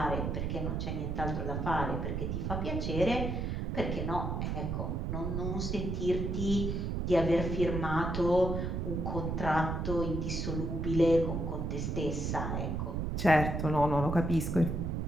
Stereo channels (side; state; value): right; noise; rumble, 1 dB below the sound